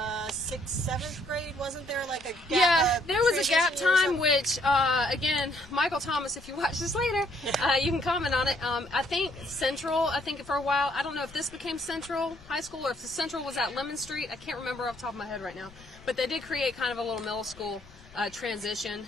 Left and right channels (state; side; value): noise; left; rumble, 23 dB below the sound